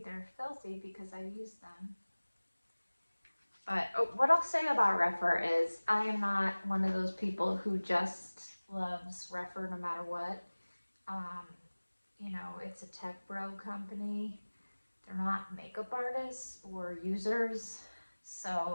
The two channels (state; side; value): inverted; both; correlation -1.00